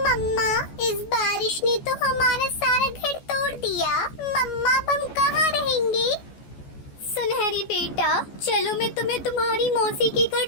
मम्मा, इस बारिश ने तो हमारा सारा घर तोड़ दिया। मम्मा, अब हम कहाँ रहेंगे? सुनहरी बेटा, चलो मैं तुम्हें तुम्हारी मौसी के घर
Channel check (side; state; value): right; late; 14 ms